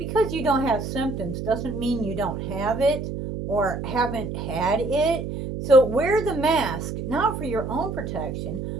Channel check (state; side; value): noise; right; hum, 5 dB below the sound